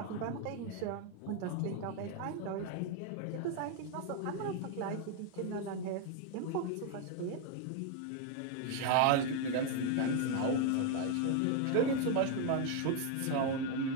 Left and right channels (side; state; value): both; different; correlation 0.01